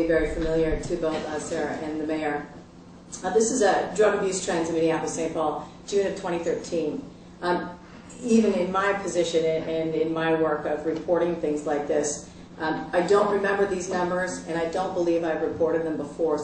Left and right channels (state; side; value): identical; both; correlation 1.00